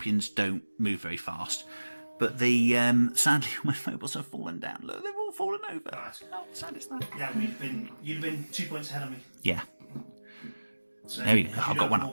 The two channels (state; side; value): inverted; both; correlation -1.00